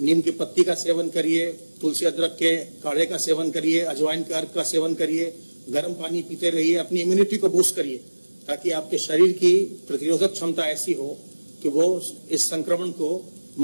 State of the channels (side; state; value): both; inverted; correlation -1.00